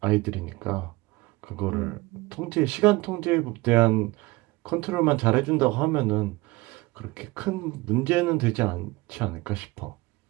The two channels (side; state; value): left; quieter; 21.4 dB